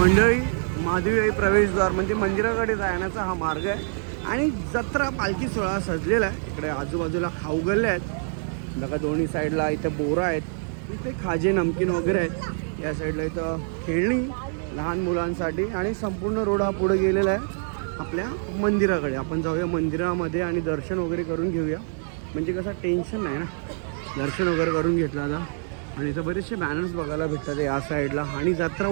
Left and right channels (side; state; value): left; silent; 57 dB below the other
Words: महादेवी आई प्रवेशद्वार म्हणजे मंदिराकडे जाण्याचा हा मार्ग आहे आणि जत्रा पालखी सोहळा सजलेला आहे. इकडे आजूबाजूला खाऊ गल्ले आहेत बघा, दोन्ही साईडला इथं बोरं आहेत, इथे खाजे नमकीन वगैरे आहेत. या साईडला इथं खेळणी लहान मुलांसाठी आणि संपूर्ण रोड हा पुढे गेलेला आहे आपल्या मंदिराकडे. आपण जाऊया मंदिरामध्ये आणि दर्शन वगैरे करून घेऊया, म्हणजे कसं टेन्शन नाही ना, दर्शन वगैरे करून घेतलं आता. आणि इथं बरेचसे बॅनर्स बघायला भेटतात या साईडला. आणि जत्रा